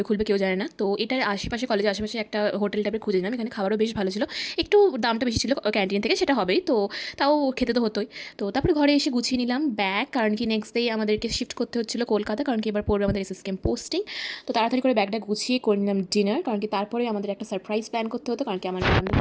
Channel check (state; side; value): identical; both; correlation 1.00